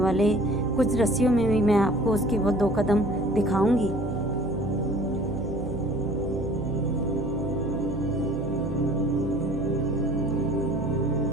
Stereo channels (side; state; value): right; noise; hum, 7 dB below the sound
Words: कुछ रस्सियों में भी मैं आपको उसके वो 2 कदम दिखाऊंगी।